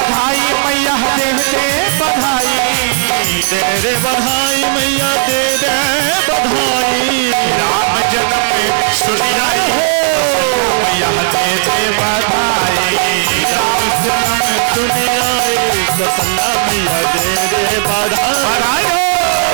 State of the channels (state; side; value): silent; left; digital silence